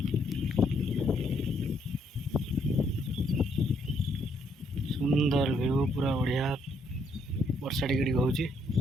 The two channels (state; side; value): normal; both; correlation 0.71